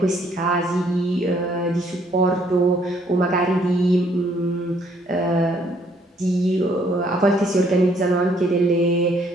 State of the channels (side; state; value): both; normal; correlation 0.66